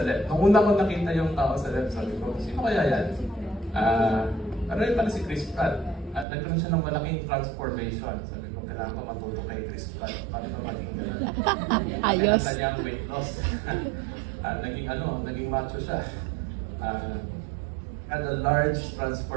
left. Nung una ko nakita yung tao sa left, sabi ko, sino kaya yan? Pero yun pala si Chris Pratt. At nagkaroon siya ng malaking transformation. Sabi ko, kailangan ko matuto kay Chris Pratt. Paano ba maging gano'n? Ayos. Kaya niyang weight loss. Naging macho siya. Had a large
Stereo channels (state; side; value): drops out; left; at 6.2 s